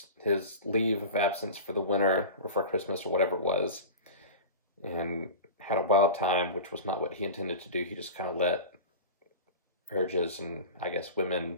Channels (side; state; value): both; inverted; correlation -0.31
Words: leave of absence for the winter or for Christmas or whatever it was, and had a wild time, which was not what he intended to do. He just kind of let urges and I guess women